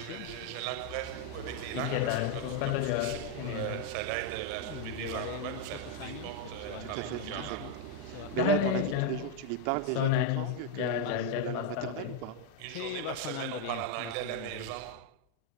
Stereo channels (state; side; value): different; both; correlation 0.01